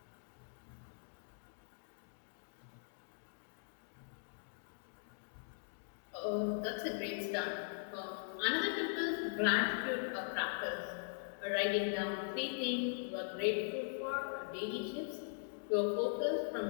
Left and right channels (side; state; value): right; silent; digital silence